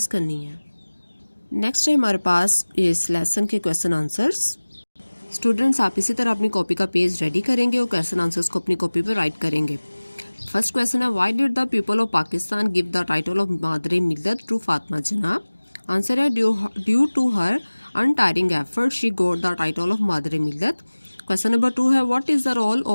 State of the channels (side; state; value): both; inverted; correlation -1.00